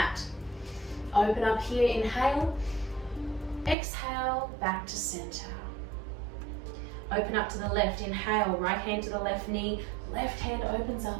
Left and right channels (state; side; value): drops out; left; at 3.8 s